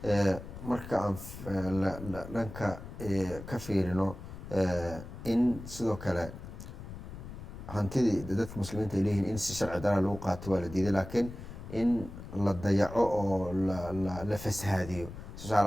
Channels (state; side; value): noise; left; rumble, 12 dB below the sound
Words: marka aan dhanka ka fiirino in sidoo kale hantidii dadka muslimiinta ay leeyihiin in si sharci daraa lagu qaato waa la diiday laakiin in la dayaco oo la fasahaadiyo